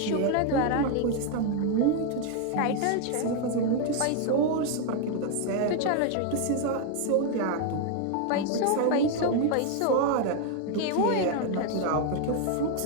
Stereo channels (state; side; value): different; both; correlation 0.00